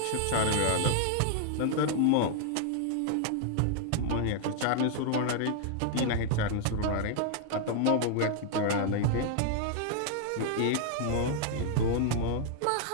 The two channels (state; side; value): different; both; correlation 0.00